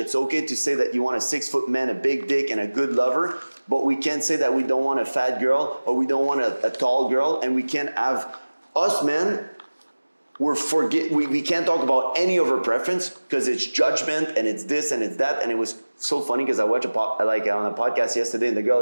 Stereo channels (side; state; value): both; inverted; correlation -1.00